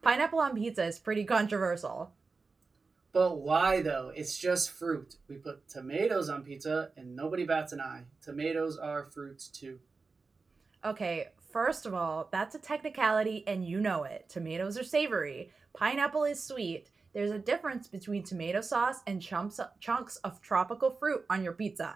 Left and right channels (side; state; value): left; quieter; 4.3 dB